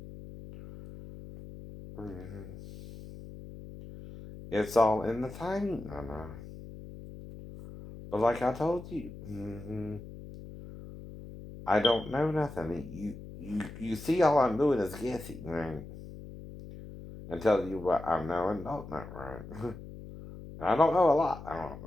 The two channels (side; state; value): left; noise; hum, 14 dB below the sound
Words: It's all in the timing, I know. But like I told you, I don't know nothing. You see all I'm doing is guessing, right? And telling you what I know and don't know, right? I don't know a lot. I don't